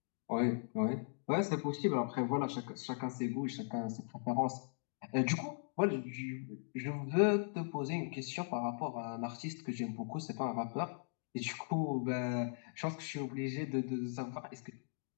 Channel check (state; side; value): silent; right; digital silence